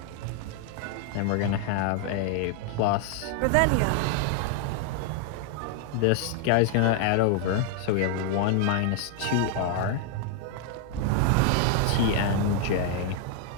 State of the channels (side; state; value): both; different; correlation 0.00